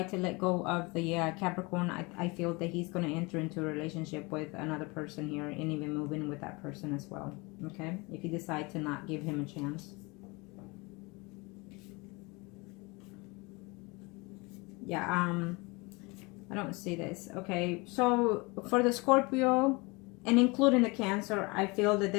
to let go of the Capricorn, I feel that he's going to enter into a relationship with another person here and even move in with that person as well. Okay? If you decide to not give him a chance. Yeah, I don't see this. Okay, so for the Scorpio and including the Cancer, I feel that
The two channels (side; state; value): right; quieter; 26.4 dB